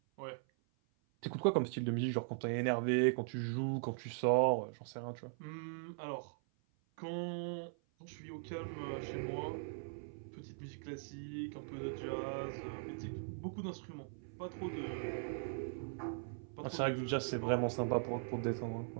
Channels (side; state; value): left; silent; 51 dB below the other